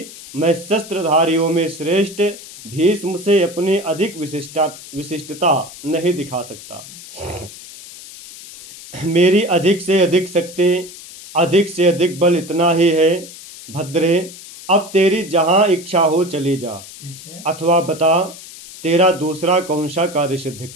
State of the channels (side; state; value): left; noise; hiss, 16 dB below the sound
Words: मैं शस्त्रधारियों में श्रेष्ठ भीष्म से अपनी अधिक विशिष्टता नहीं दिखा सकता। मेरी अधिक से अधिक शक्ति, अधिक से अधिक बल इतना ही है। भद्रे, अब तेरी जहाँ इच्छा हो चली जा, अथवा बता तेरा दूसरा कौन सा कार्य सिद्ध